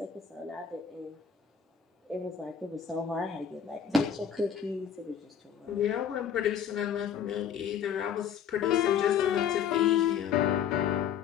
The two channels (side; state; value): right; quieter; 8.2 dB